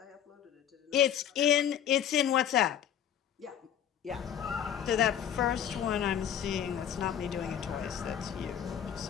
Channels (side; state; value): right; quieter; 9.5 dB